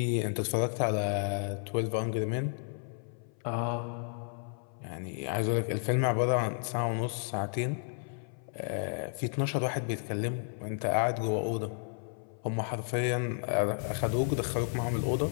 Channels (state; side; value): silent; right; 56 dB below the other